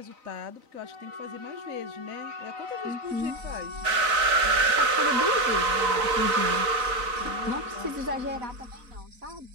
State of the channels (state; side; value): late; left; 4.0 ms